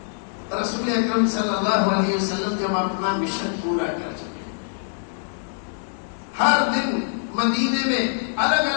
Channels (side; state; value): right; silent; digital silence